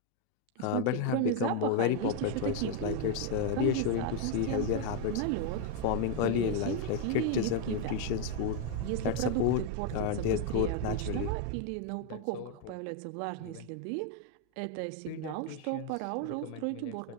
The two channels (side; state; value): both; different; correlation 0.01